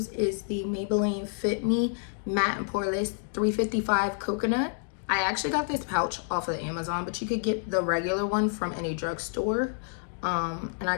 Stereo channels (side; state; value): right; silent; 59 dB below the other